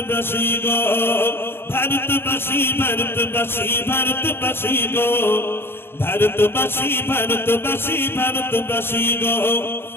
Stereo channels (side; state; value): right; late; 0.11 ms